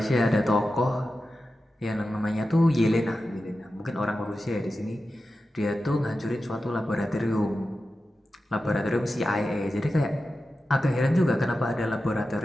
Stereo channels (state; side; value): normal; both; correlation 0.92